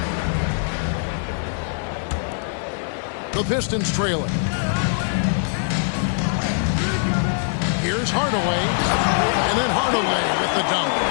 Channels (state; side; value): silent; right; 64 dB below the other